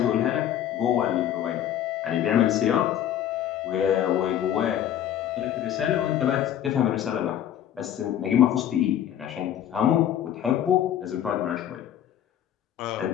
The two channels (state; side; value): quieter; right; 10.8 dB